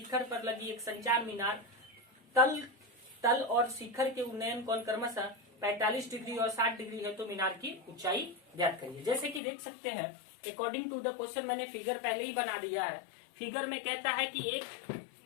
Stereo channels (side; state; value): right; drops out; at 9.4 s